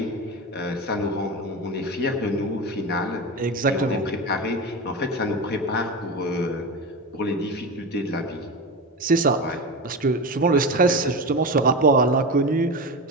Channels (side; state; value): both; normal; correlation 0.23